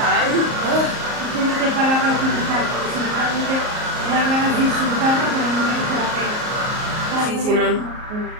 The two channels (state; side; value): late; left; 38 ms